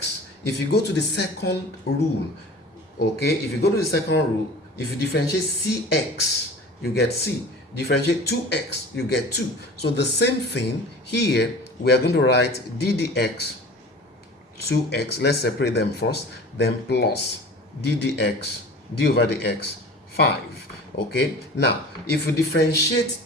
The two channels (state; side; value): normal; both; correlation 0.40